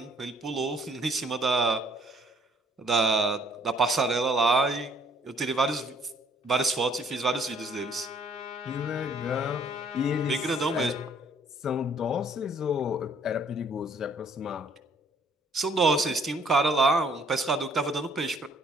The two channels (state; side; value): normal; both; correlation 0.62